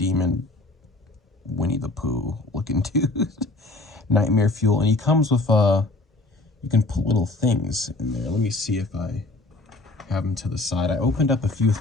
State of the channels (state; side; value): quieter; right; 3.0 dB